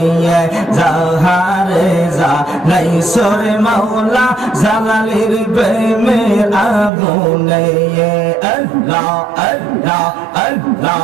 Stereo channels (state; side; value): drops out; left; at 6.9 s